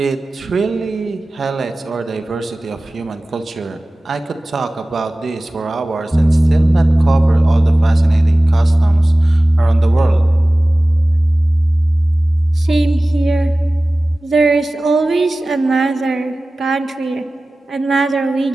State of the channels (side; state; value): both; normal; correlation 0.97